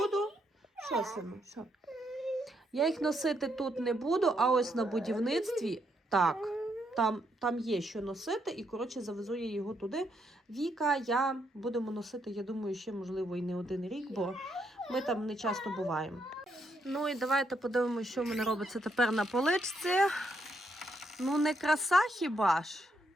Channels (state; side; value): normal; both; correlation 0.77